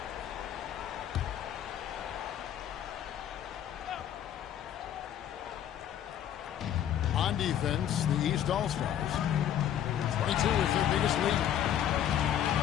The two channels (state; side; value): quieter; right; 10.4 dB